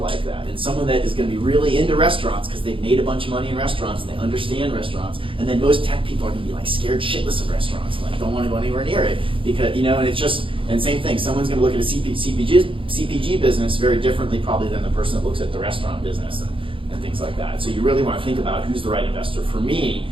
that, and someone that is going to be really into restaurants because they've made a bunch of money in restaurants and they understand restaurants, and then most tech people are going to be like scared shitless of restaurants, and like don't want to go anywhere near it because, you know, and it's just, and same thing, someone's going to look at a CPG business very differently probably than the person that looks at the restaurant business and things like that. So you really want to think about who's the right investor for me,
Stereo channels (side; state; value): left; late; 0.25 ms